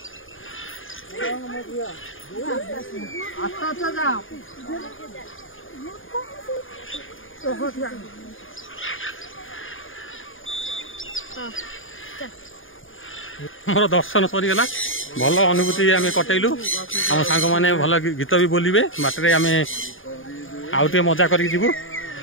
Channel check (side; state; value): right; late; 0.58 ms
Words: अच्छा जाओ मोर दर्शन सरीगला भल अनुभूति आम कटेलु आम सांग मैंने भल गीत भी बोलिबे बाटे आम आउ टे मजा कर जीवु